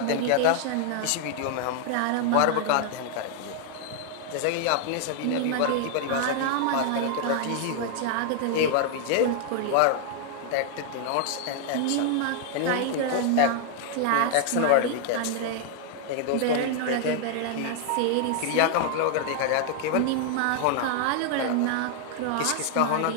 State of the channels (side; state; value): both; different; correlation 0.00